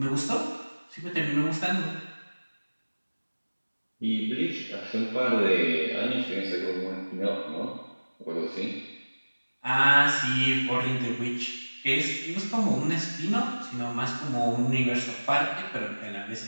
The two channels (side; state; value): both; inverted; correlation -1.00